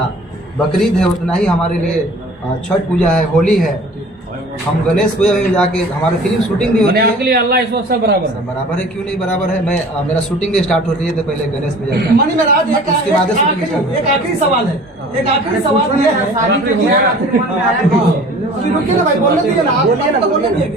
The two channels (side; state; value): both; normal; correlation 0.46